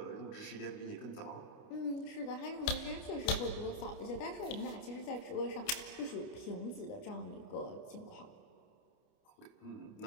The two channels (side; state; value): right; late; 29 ms